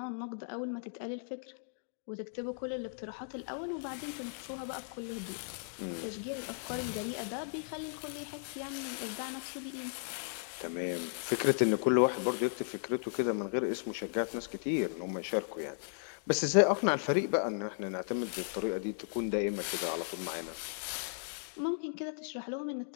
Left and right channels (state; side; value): silent; right; digital silence